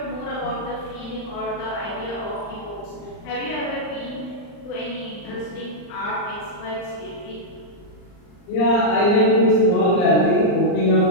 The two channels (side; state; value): right; late; 39 ms